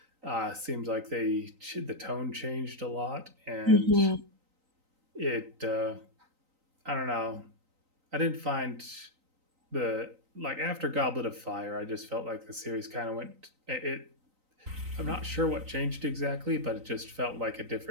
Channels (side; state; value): left; late; 3.9 ms